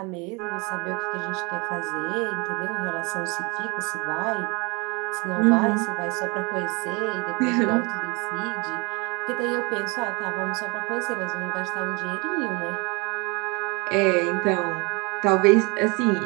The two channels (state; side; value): quieter; left; 28.4 dB